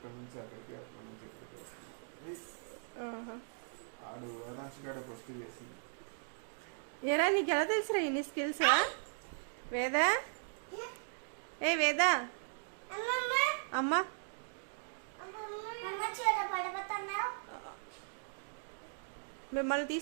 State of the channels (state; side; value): silent; left; digital silence